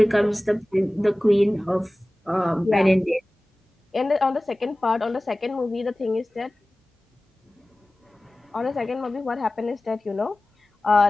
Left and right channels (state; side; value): normal; both; correlation 0.97